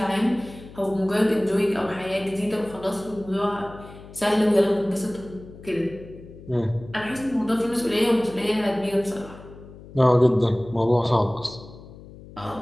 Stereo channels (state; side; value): noise; left; hum, 18 dB below the sound